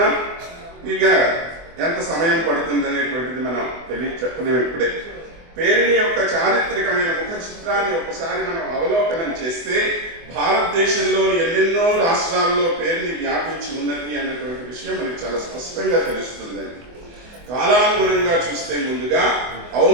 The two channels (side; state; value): left; late; 24 ms